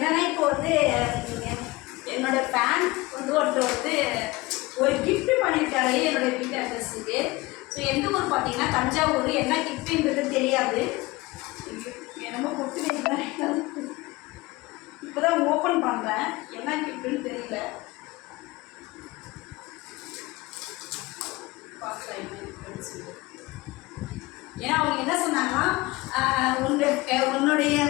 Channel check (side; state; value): right; quieter; 21.5 dB